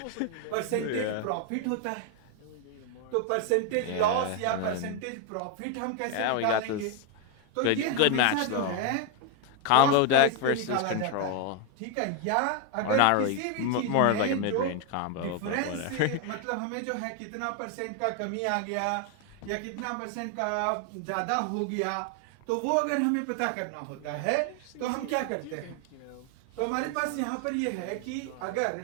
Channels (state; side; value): different; both; correlation 0.01